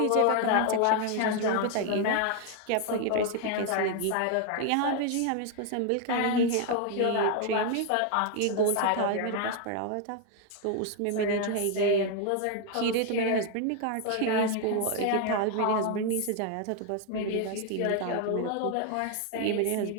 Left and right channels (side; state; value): both; different; correlation 0.01